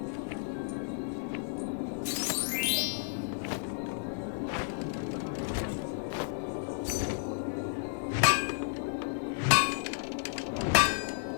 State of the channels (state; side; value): silent; right; digital silence